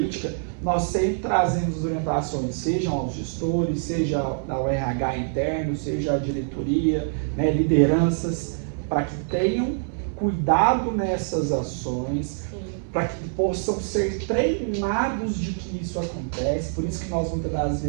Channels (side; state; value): left; silent; digital silence